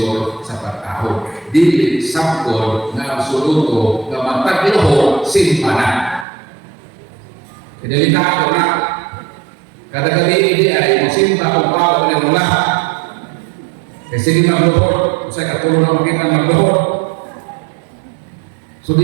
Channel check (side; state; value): left; drops out; at 6.2 s